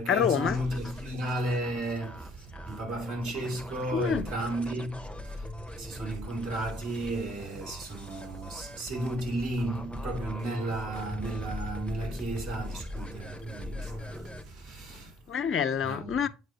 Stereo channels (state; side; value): normal; both; correlation 0.62